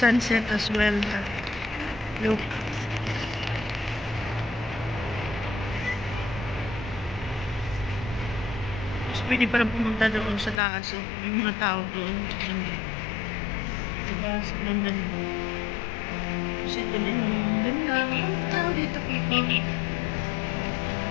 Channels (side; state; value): right; drops out; at 10.6 s